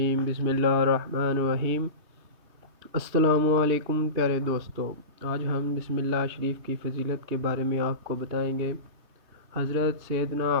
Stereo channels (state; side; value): late; left; 3.2 ms